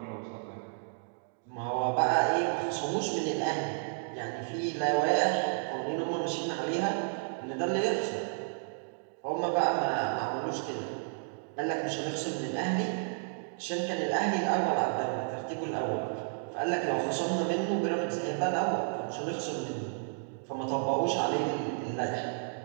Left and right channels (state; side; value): silent; left; digital silence